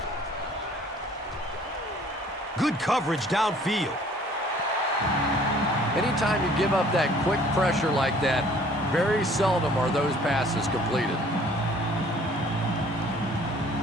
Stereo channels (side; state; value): both; normal; correlation 0.55